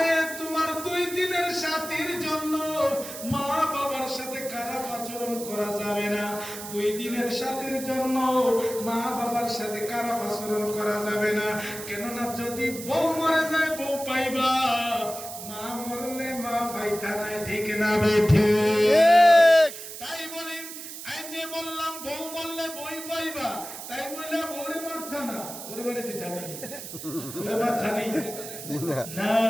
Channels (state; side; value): noise; right; hiss, 10 dB below the sound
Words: তোমার 2 দিনের সাথীর জন্য মা বাবার সাথে খারাপ আচরণ করা যাবে না। 2 দিনের সাথীর জন্য মা বাবার সাথে খারাপ আচরণ করা যাবে না। কেননা যদি বউ মরে যায় বউ পাইবা, মা মরলে মা পাইতা নাই, ঠিক না বেঠি? তাই বলি, এই যে বললাম বউ মরলে বই পাইবা, তাই বললে বউরে মারতা না, ওরে মারিতে জানি ওরে মারতা নেই না।